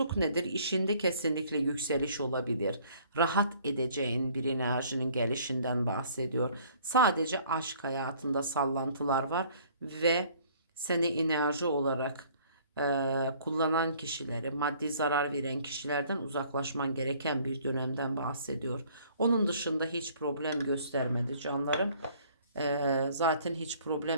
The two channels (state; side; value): inverted; both; correlation -0.57